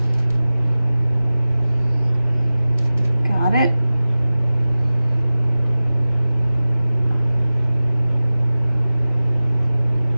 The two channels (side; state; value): both; inverted; correlation -0.97